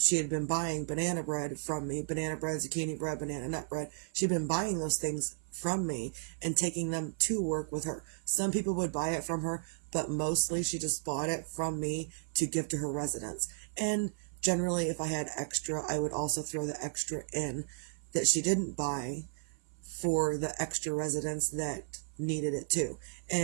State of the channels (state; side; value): silent; left; 55 dB below the other